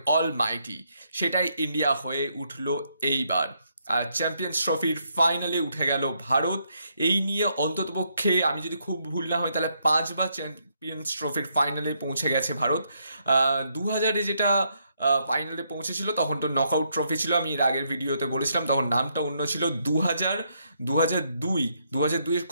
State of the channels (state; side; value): inverted; both; correlation -0.76